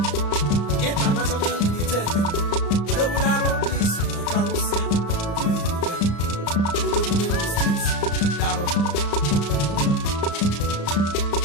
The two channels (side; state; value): right; late; 34 ms